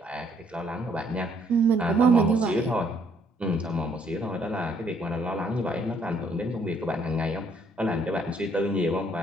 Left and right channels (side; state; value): both; normal; correlation 0.66